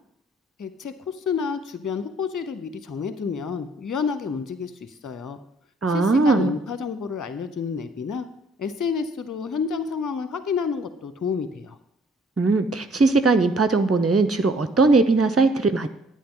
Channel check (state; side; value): normal; both; correlation 0.61